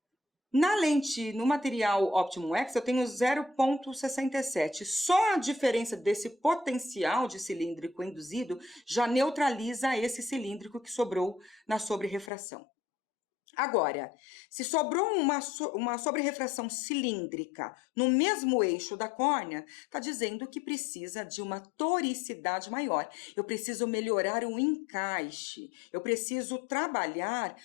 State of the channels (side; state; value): right; drops out; at 12.3 s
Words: No material Optimum X, eu tenho 0,67. Só a diferença desse potencial de cilíndrico induzido já neutraliza esse cilíndrico que sobrou na sobrerrefração. Agora, se sobrou uma sobrerrefração cilíndrica no mesmo eixo da córnea, está dizendo que precisa de uma toricidade maior. Eu preciso melhorar o encaixe, eu preciso trabalhar